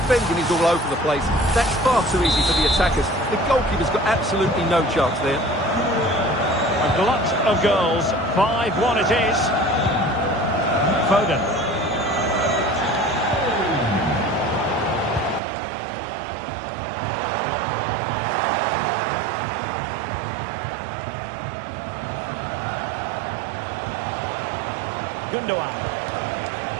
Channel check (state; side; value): drops out; left; at 15.4 s